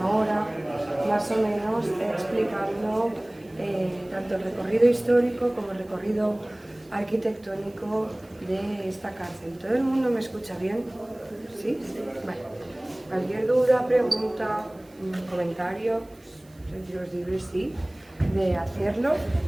hora más o menos explicando tanto el recorrido histórico como el recorrido arquitectónico de esta cárcel. ¿Todo el mundo me escucha bien? ¿Sí? Vale. Cualquier duda, pregunta, comentario, sentiros libres, sí, de hacerlo.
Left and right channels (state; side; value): noise; right; hiss, 30 dB below the sound